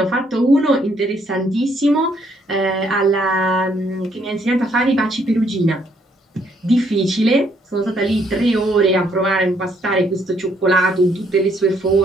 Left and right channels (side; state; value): both; normal; correlation 0.69